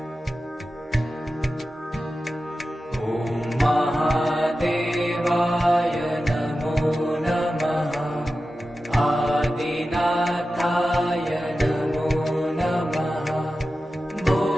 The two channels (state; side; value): normal; both; correlation 0.93